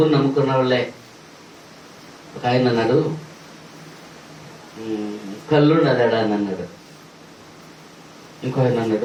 నమ్ముకున్న వాళ్ళే. ఒక ఆయన అన్నాడు, కళ్ళున్నదాడా అని అన్నాడు. ఇంకో ఆయన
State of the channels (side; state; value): both; identical; correlation 1.00